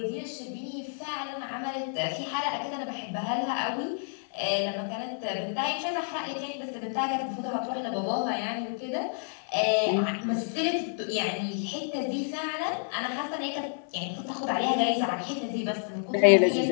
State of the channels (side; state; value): right; silent; 56 dB below the other